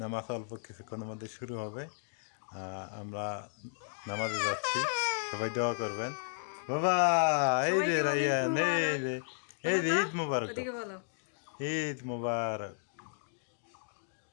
নামাজ অল্প কিছুক্ষণের মধ্যে শুরু হবে। আমরা নামাজে যাচ্ছি, সবাই দোয়া করবেন। বাবা এই যে রাইয়ান, এই যে ঈদ মুবারক, ঈদ মুবারক।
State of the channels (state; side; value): silent; right; digital silence